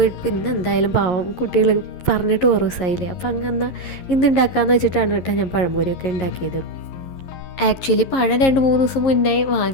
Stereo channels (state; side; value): late; right; 11 ms